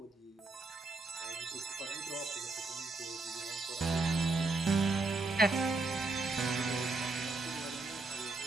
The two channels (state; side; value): quieter; left; 3.3 dB